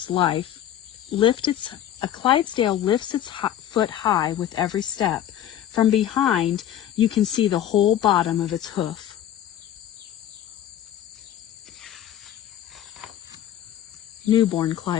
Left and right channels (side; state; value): right; quieter; 11.1 dB